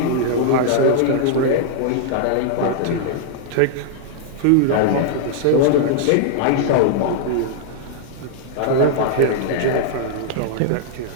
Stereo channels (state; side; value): different; both; correlation -0.01